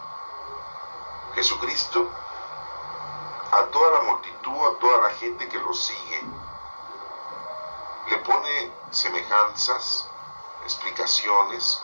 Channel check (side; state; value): both; inverted; correlation -1.00